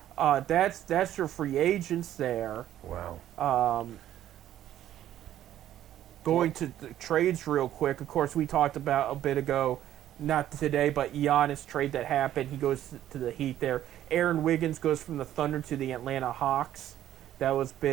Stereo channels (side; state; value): left; quieter; 12.1 dB